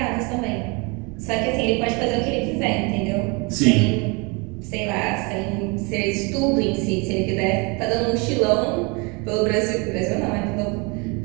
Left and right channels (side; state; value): left; quieter; 29.8 dB